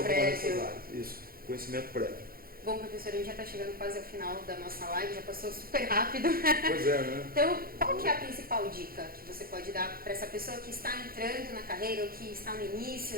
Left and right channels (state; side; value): late; left; 0.43 ms